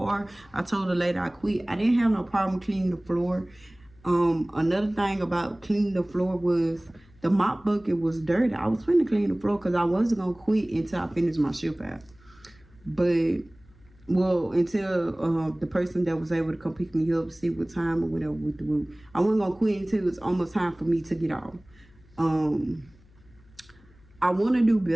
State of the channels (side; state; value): left; noise; hum, 28 dB below the sound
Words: I told the lady I quit. I didn't have no problem cleaning the floor. Another thing about cleaning the floor was the mop bucket was dirty. I was finna clean the floor because I wasn't going to quit until I finished my shift out. But, well, until the person that was able to come pick me up, see what time or whatever with the room. I wasn't going to quit until it was almost time for me to get off. I want to do